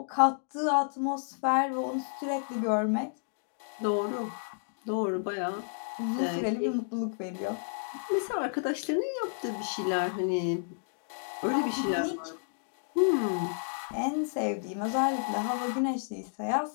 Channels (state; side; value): silent; right; digital silence